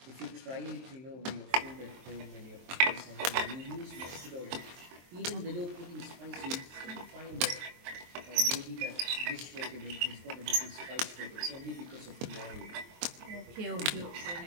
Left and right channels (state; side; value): late; left; 23 ms